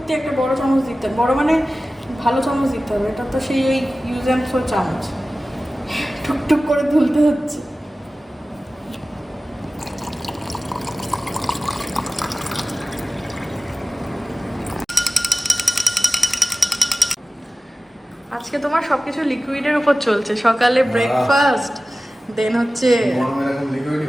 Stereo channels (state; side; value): normal; both; correlation 0.96